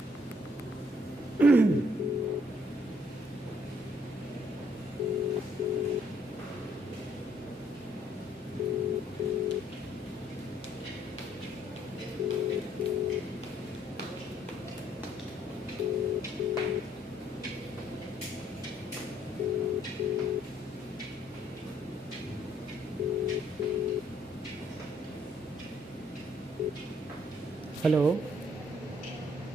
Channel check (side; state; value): right; noise; hum, 30 dB below the sound